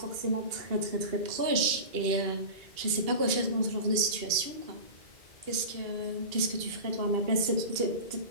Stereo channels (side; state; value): left; late; 2.7 ms